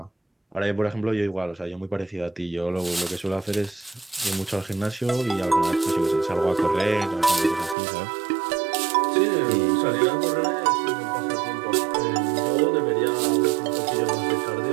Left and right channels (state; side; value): drops out; left; at 7.8 s